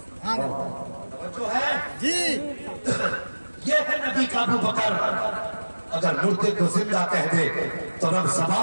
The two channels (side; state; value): both; inverted; correlation -1.00